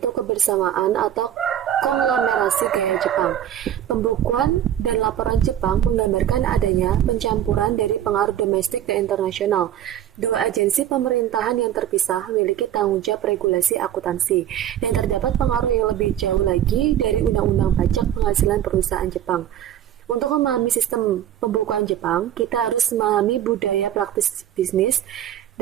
kebersamaan atau konglomerasi gaya Jepang. Pembukuan dan laporan Jepang menggambarkan adanya pencampuran dari pengaruh domestik dan internasional. Dua agensi pemerintahan yang terpisah memiliki tanggung jawab regulasi akuntansi, dan terdapat pengaruh yang lebih jauh lagi dari undang-undang pajak penghasilan perusahaan Jepang. Untuk memahami sistem pembukuan Jepang, kita harus memahami budaya praktis bisnis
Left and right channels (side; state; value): left; quieter; 10.9 dB